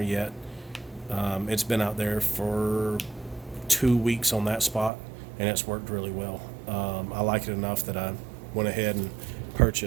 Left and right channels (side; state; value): left; drops out; at 4.9 s